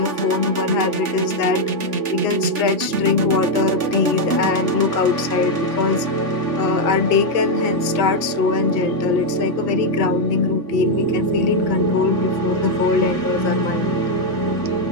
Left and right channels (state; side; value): late; left; 3.4 ms